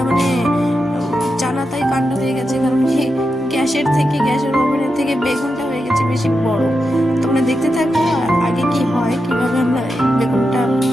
জানাতাই কাণ্ড হয়ে গেছে, কারণ কি গ্যাসের ওভেনের থেকে বেগুনটা হয়ে গেছে বেশি বড়। তোমরা দেখতে থাকো আগে কি হয়, কিভাবে আমরা বেগুনটা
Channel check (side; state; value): both; normal; correlation 0.88